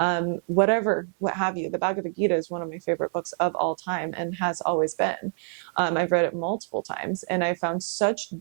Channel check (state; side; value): silent; left; 56 dB below the other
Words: What have you. The Bhagavad Gita is one of my favorite books of all time and has always been. I've read it multiple times and I found such